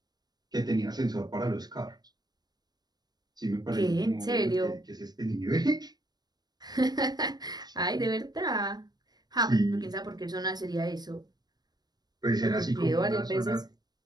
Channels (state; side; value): late; left; 0.19 ms